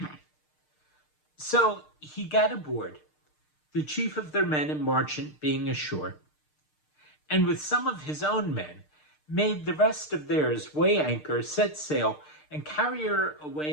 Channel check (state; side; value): late; right; 6.6 ms